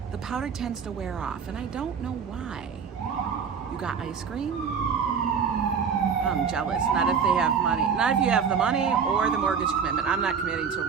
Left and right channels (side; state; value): left; quieter; 6.4 dB